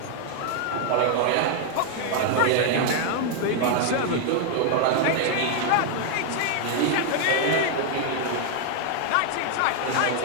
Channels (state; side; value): different; both; correlation 0.00